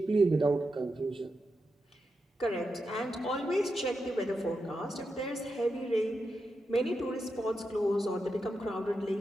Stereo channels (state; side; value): normal; both; correlation 0.87